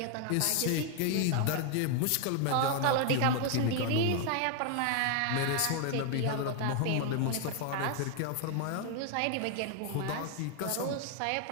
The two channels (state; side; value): different; both; correlation 0.00